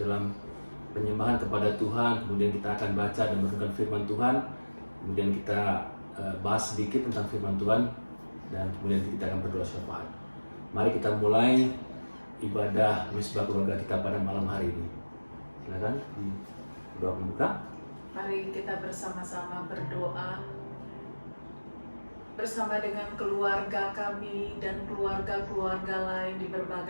penyembahan kepada Tuhan. Kemudian kita akan baca dan merenungkan firman Tuhan. Kemudian kita bahas sedikit tentang firman Tuhan dan kemudian kita akan berdoa syafaat. Mari kita mulai ibadah mesbah keluarga kita pada malam hari ini. Silakan doa pembuka. Mari kita bersama-sama berdoa bersama dengan keluarga kami dan keluarga-keluarga lain di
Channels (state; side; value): inverted; both; correlation -1.00